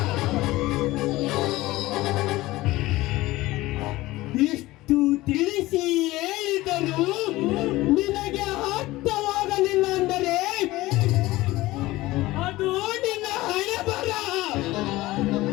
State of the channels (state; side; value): quieter; right; 18.4 dB